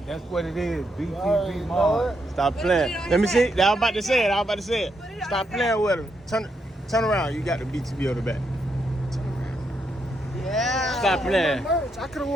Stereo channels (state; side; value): normal; both; correlation 0.80